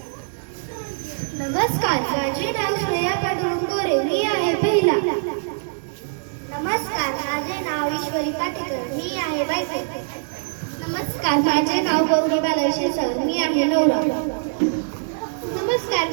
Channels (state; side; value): silent; left; 60 dB below the other